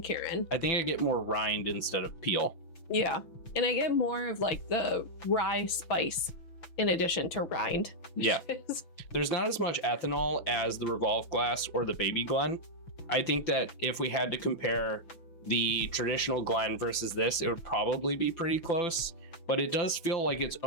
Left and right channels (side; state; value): right; late; 6.0 ms